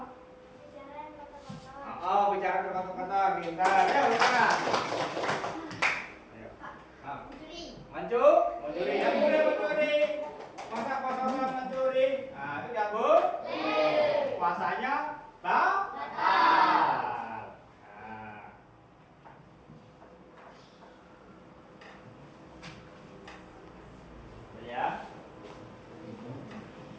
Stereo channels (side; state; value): both; identical; correlation 1.00